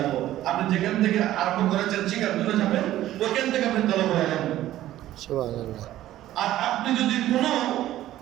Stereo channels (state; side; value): quieter; left; 13.9 dB